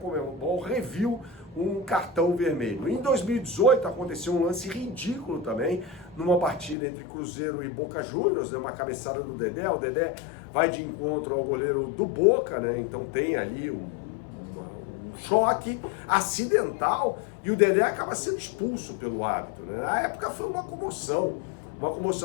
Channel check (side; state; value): right; drops out; at 6.8 s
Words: reviu um cartão vermelho. Em 2018 aconteceu um lance ridículo também, numa partida entre Cruzeiro e Boca Juniors, né, uma cabeçada do Dedé. O Dedé vai de encontro ao goleiro do Boca, né, então tem ali um choque acidental e o Dedé acaba sendo expulso pelo árbitro, né? Na época foi uma comoção.